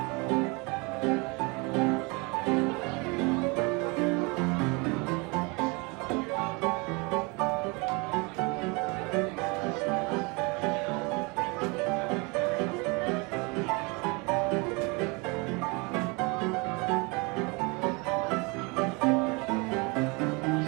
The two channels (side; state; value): left; quieter; 28.7 dB